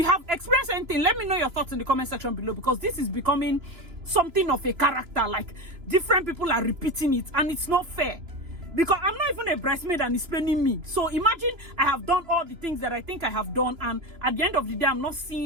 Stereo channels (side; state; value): left; late; 3.0 ms